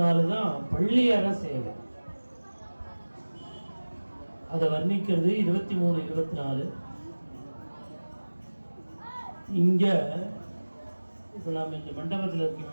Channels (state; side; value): inverted; both; correlation -1.00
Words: தான் பள்ளியற சேவை. அதை வர்ணிக்கிறது 23, 24. இங்க இப்போ நாம் இந்த மண்டபத்தில்